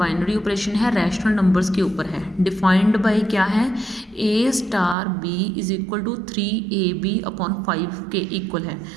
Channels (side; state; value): left; drops out; at 5.0 s